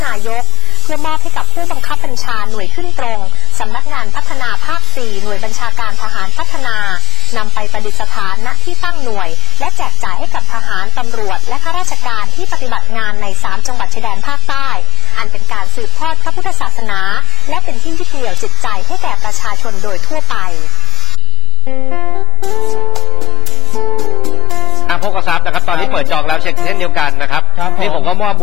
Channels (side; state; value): right; noise; rumble, 12 dB below the sound